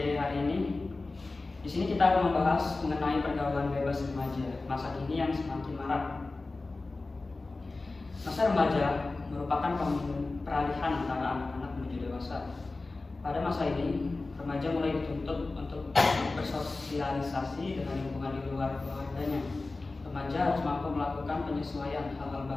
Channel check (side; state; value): right; quieter; 3.4 dB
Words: hari ini. Di sini kita akan membahas mengenai pergaulan bebas remaja masa kini yang semakin marak. Masa remaja merupakan peralihan antara anak-anak menuju dewasa. Pada masa ini, remaja mulai dituntut untuk bersosialisasi dengan lingkungan di luar keluarganya. Remaja harus mampu melakukan penyesuaian hal-hal